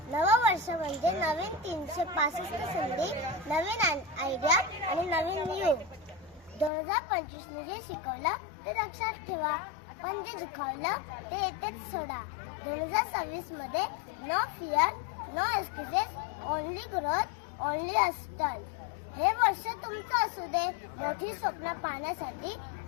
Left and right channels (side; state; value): right; drops out; at 6.7 s